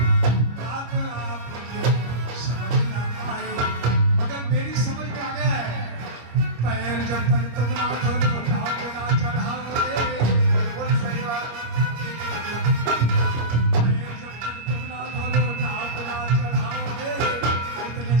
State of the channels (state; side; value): late; left; 25 ms